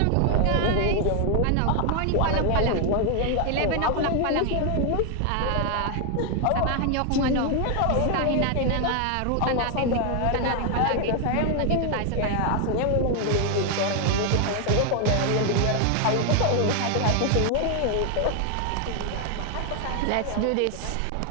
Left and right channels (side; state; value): both; different; correlation 0.01